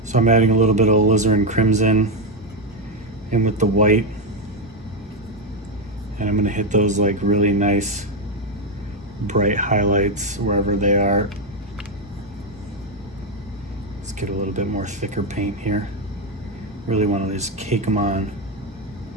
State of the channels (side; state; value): both; normal; correlation 0.07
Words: So I'm adding a little bit of alizarin crimson in with the white, and I'm gonna hit those like really nice bright highlights wherever they are. Let's get a little bit more thicker paint here. Really want to just cake them on.